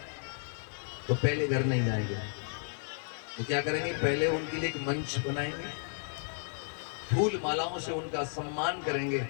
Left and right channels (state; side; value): silent; right; digital silence